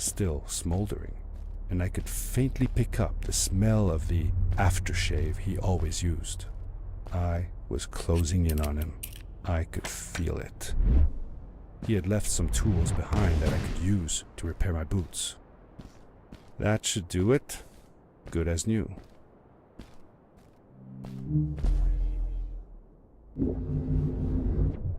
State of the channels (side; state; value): both; identical; correlation 1.00